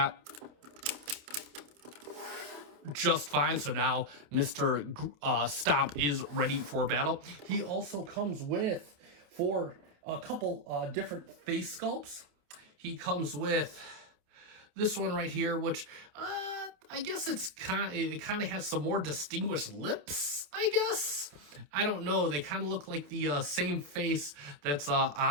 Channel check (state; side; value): late; left; 28 ms